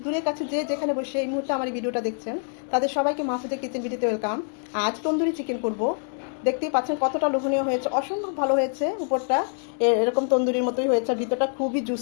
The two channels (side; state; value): right; silent; 61 dB below the other